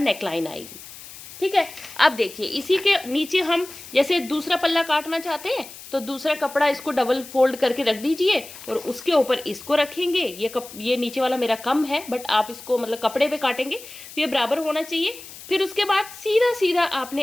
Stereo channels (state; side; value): noise; left; hiss, 16 dB below the sound